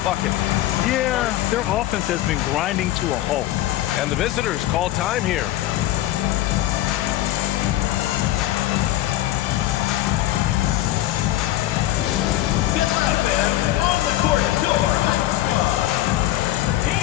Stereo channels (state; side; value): quieter; right; 14.7 dB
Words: bucket. Yeah, their offense has been grinding to a halt. And the visitors call time here. Get up and on the court, your hot squad.